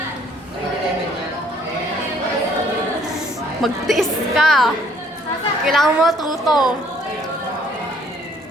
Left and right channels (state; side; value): normal; both; correlation 0.62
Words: Magtiis ka. Kailangan mo tuto.